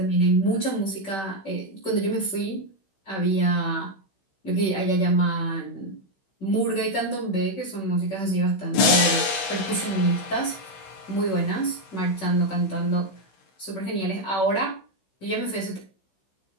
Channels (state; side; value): late; right; 16 ms